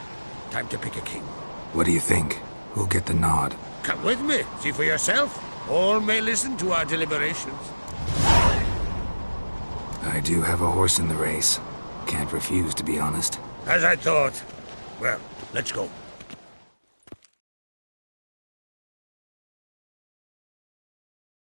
Time to pick a king. What do you think? Who'll get the nod? Come with me, see for yourself. All may listen to our deliberations. I do have a horse in the race. Can't refuse, to be honest. As I thought. Well, let's go.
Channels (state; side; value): inverted; both; correlation -1.00